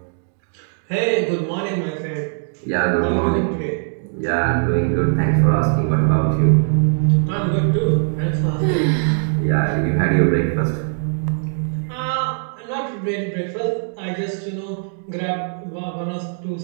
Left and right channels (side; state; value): left; silent; digital silence